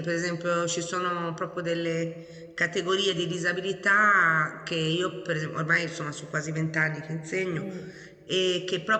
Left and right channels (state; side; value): identical; both; correlation 1.00